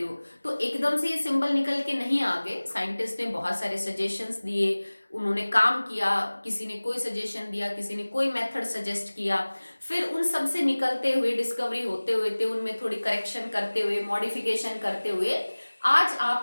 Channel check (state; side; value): inverted; both; correlation -1.00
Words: हो, तो एकदम से ये सिंबल निकल के नहीं आ गए. साइंटिस्ट ने बहुत सारे सजेशंस दिए, उन्होंने काम किया, किसी ने कोई सजेशन दिया, किसी ने कोई मेथड सजेस्ट किया, फिर उन सब से निकलते हुए डिस्कवरी होते हुए थे, उनमें थोड़ी करेक्शन करते हुए, मॉडिफिकेशन करते हुए आज